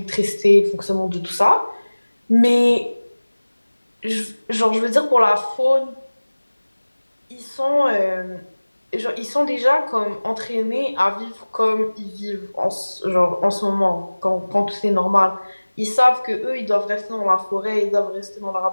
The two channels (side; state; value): both; inverted; correlation -1.00